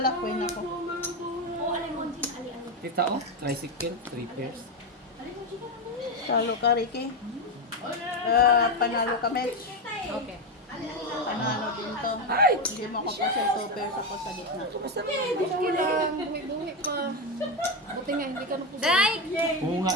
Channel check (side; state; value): both; normal; correlation 0.11